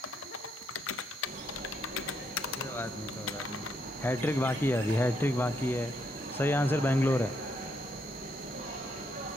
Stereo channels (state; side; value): normal; both; correlation 0.75